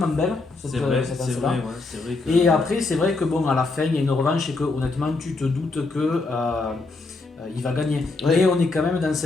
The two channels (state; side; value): quieter; right; 3.6 dB